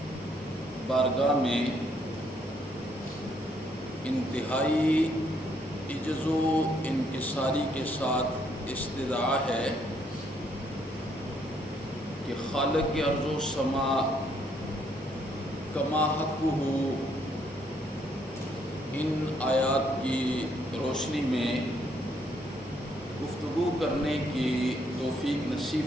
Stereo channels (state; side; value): normal; both; correlation 0.70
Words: بارگاہ میں انتہائی عجز و انکساری کے ساتھ استدعا ہے کہ خالق ارض و سما کما حقہ ان آیات کی روشنی میں گفتگو کرنے کی توفیق نصیب